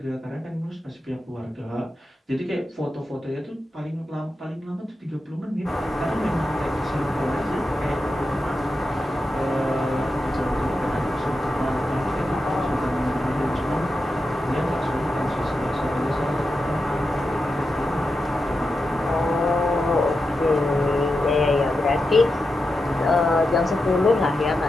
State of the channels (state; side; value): normal; both; correlation 0.89